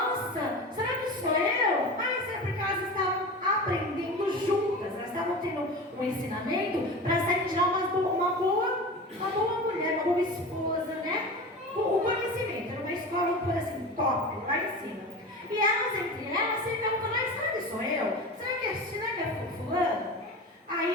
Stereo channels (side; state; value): both; normal; correlation 0.30